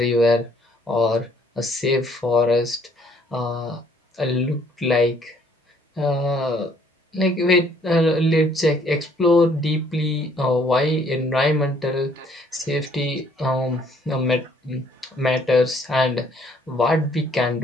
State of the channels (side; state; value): both; normal; correlation 0.63